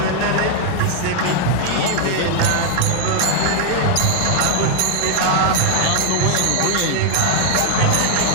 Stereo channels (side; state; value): both; different; correlation 0.00